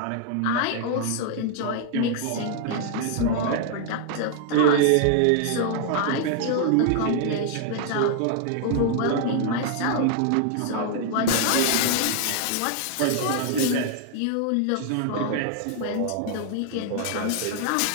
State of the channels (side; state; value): both; different; correlation 0.00